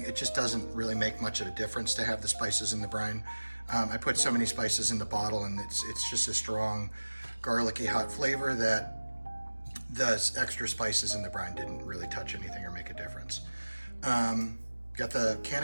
it just doesn't really make much of a difference to have the spices in the brine. I put so many spices in the bottle, and it's just a strong, garlicky, hot flavor that the extra spices in the brine didn't really touch anything or make a difference. Got the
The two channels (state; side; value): inverted; both; correlation -1.00